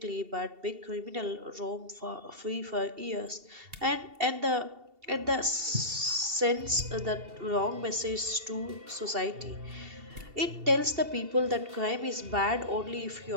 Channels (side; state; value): left; late; 2.7 ms